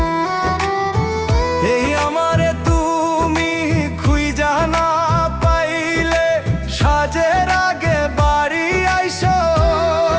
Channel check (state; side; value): identical; both; correlation 1.00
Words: এই আমারে তুমি খুঁজা না পাইলে সাজের আগে বাড়ি আইসো,